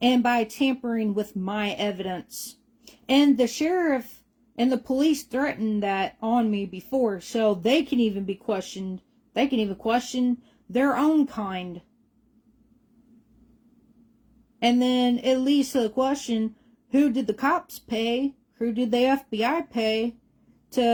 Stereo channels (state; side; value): identical; both; correlation 1.00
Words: And by tampering with my evidence. And the sheriff and the police threatened that on me before, so they can even be questioned. They can even question their own kind. And then it leads to the question, who did the cops pay? Who did the FBI pay